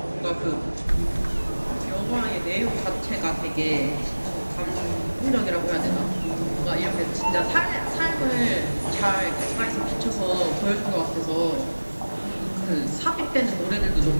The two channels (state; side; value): inverted; both; correlation -1.00